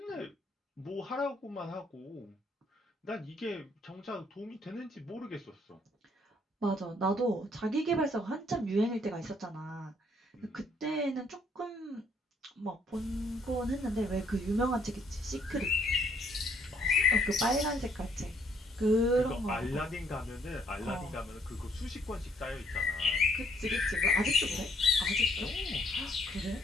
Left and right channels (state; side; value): normal; both; correlation 0.66